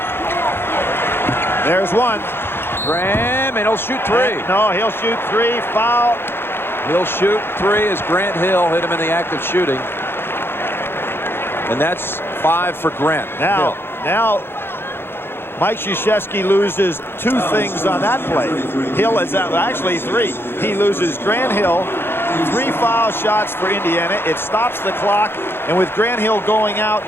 There's one. Graham, and he'll shoot 3. No, he'll shoot 3. Foul. He'll shoot 3 as Grant Hill hit him in the act of shooting. And that's 5 for Grant. Now, Mike Krzyzewski loses 2 things on that play. Hill is actually 3. He loses Grant Hill, 3 foul shots for Indiana. It stops the clock, and with Grant Hill going out,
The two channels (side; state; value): right; late; 0.11 ms